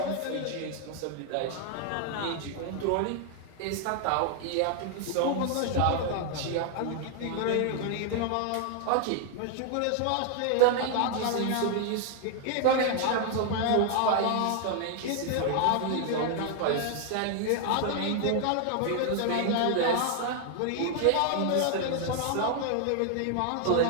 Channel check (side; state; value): both; different; correlation 0.00